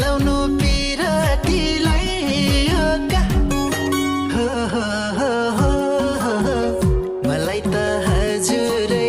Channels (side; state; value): both; identical; correlation 1.00